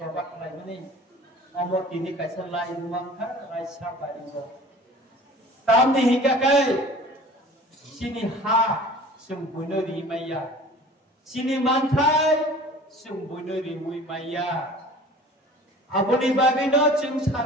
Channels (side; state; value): both; normal; correlation 0.44